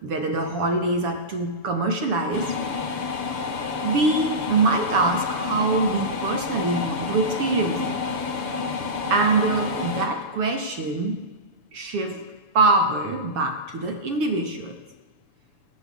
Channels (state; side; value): late; left; 7.0 ms